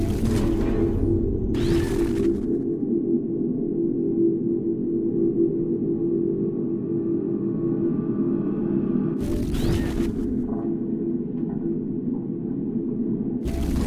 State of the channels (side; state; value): both; identical; correlation 1.00